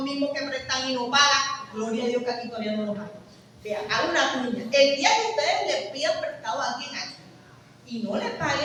mismos que prestan y no pagan. Gloria a Dios que aquí todavía no lo pagan. Vean, hagan una cuña. El día que ustedes le pidan prestado a alguien aquí y no le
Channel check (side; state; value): both; identical; correlation 1.00